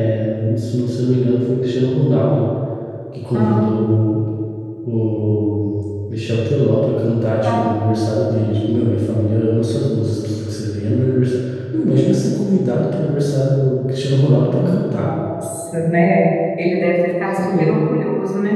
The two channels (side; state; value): both; identical; correlation 1.00